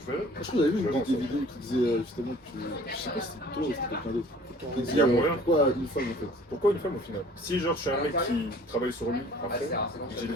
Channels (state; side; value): normal; both; correlation 0.51